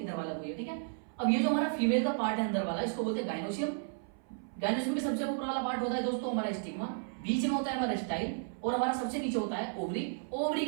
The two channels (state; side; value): silent; left; 56 dB below the other